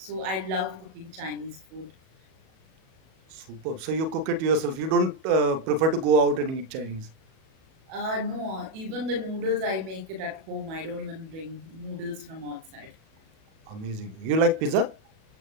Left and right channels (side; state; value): left; late; 37 ms